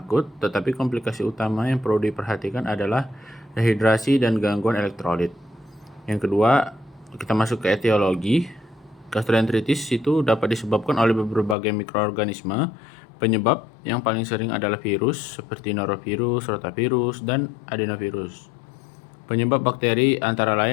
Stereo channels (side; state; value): right; drops out; at 11.6 s